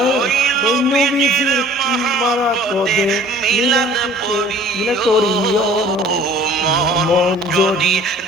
ওই নবীজির মহব্বতে মিলাদ পড়িও। মন যদি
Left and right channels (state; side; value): normal; both; correlation 0.50